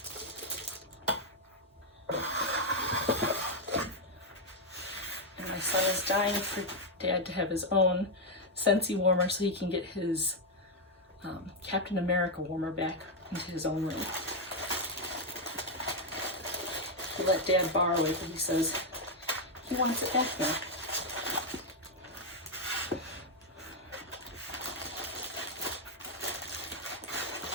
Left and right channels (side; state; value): both; normal; correlation 0.01